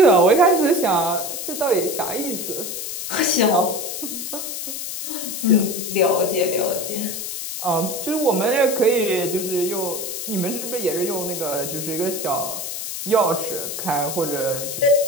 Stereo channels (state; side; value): noise; left; hiss, 6 dB below the sound